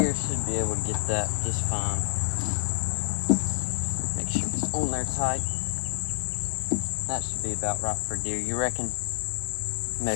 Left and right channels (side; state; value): right; silent; digital silence